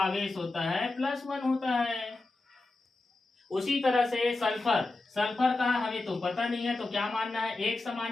होता है +1 होता है। उसी तरह से सल्फर, सल्फर का हमें तो पता नहीं है, तो क्या मानना है? 1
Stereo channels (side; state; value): right; quieter; 3.2 dB